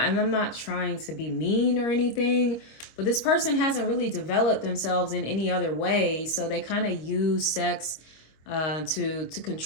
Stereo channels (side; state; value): right; late; 25 ms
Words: not trying to be mean or anything, but this person hasn't really developed themselves in any other way. So they kind of use sex to